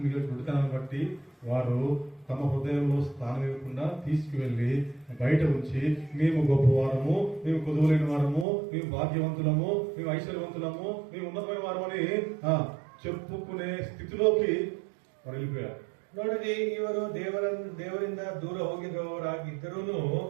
గుడితనాన్ని బట్టి వారు తమ హృదయంలో స్థానం ఇవ్వకుండా తీసుకువెళ్లి బయట ఉంచి మేము గొప్పవారము, మేము కొదువులేని వారము, మేము భాగ్యవంతులము, మేము ఐశ్వర్యవంతులము, మేము ఉన్నతమైన వారమని చెప్పుకునే స్థితిలోకి వారు వెళ్ళిపోయారు. ನೋಡಿರಿ, ಇವರು ದೇವರಿಂದ ದೂರ ಹೋಗಿರುವವರಾಗಿದ್ದರೂ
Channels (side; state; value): left; drops out; at 8.5 s